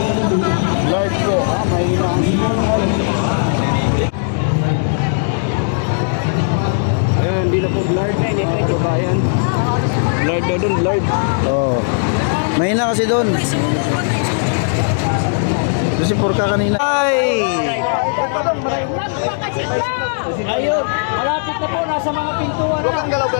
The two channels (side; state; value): right; silent; 67 dB below the other